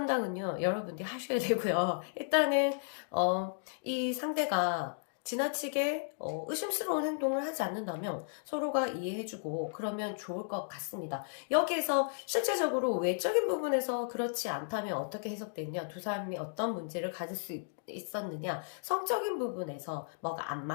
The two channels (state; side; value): silent; right; digital silence